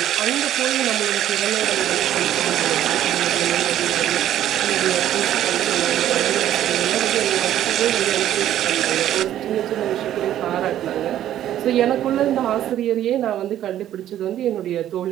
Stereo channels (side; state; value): left; quieter; 11.9 dB